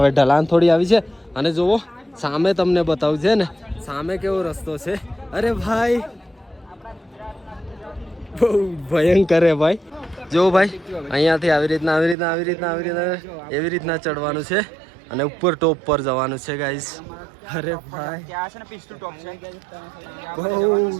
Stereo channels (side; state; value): left; drops out; at 12.2 s